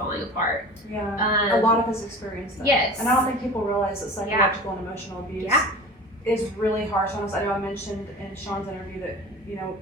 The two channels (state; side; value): normal; both; correlation 0.37